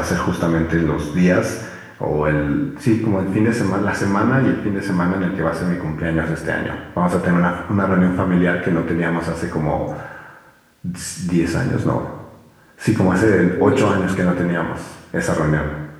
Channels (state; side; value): identical; both; correlation 1.00